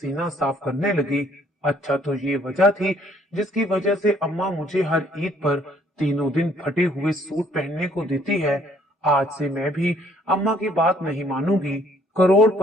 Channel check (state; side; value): normal; both; correlation 0.63